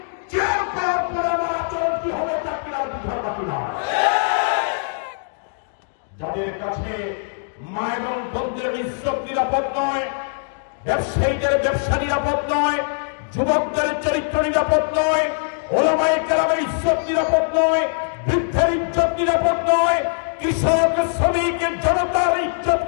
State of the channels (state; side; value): silent; right; digital silence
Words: চেয়ার পাওয়ার পরে আমার আচরণ কি হবে তা কি আর বুঝার বাকি না। যাদের কাছে মা এবং বোনদের ইজ্জত নিরাপদ নয়, ব্যবসায়ীদের ব্যবসা নিরাপদ নয়, যুবকদের চরিত্র নিরাপদ নয়, ওলামায়ে কেরামের ইজ্জত নিরাপদ নয়, বৃদ্ধের ইজ্জত নিরাপদ নয়, কৃষক, শ্রমিক, জনতার ইজ্জত